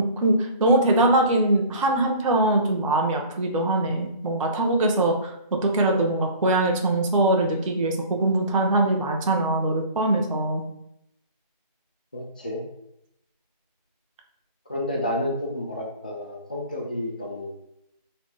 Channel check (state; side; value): inverted; both; correlation -0.42